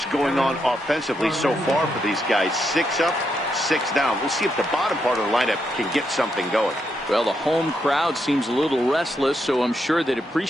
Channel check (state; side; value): normal; both; correlation 0.80